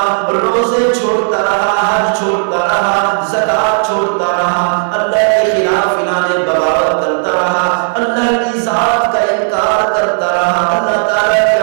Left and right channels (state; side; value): silent; left; digital silence